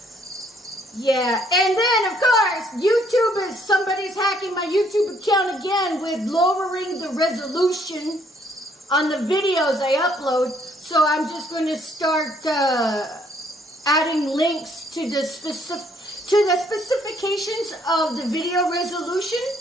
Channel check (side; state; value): both; normal; correlation 0.66